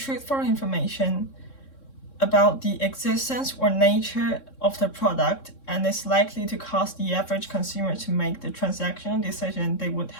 information about the existence or nature of the product and is likely to cause the average consumer to make the transactional decision they would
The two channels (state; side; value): late; right; 3.6 ms